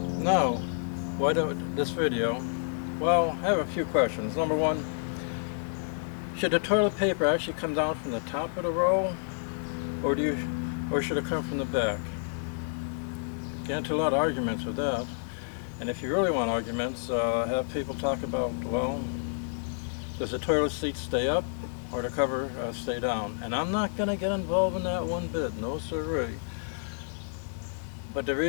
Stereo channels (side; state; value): right; silent; digital silence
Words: Now, why do this video? Well, I have a few questions. Number one, should the toilet paper actually come down from the top of the roll, or should it come from the back? Get into a lot of arguments with that. And if you really want arguments, have people talk about, well, does the toilet seat stay up or the cover stay down? And I'm not going to get involved in that one bit, no siree. But the